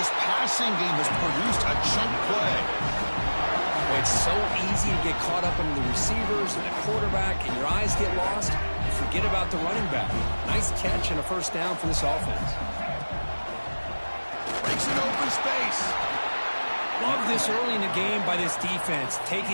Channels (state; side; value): inverted; both; correlation -1.00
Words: passing game has produced a chunk play. Boy, it's so easy to get caught up in the receivers and the quarterback, and your eyes get lost. Forget about the running back. Nice catch and a 1st down for this offense. Breaks an open space. Love this early in the game by this defense,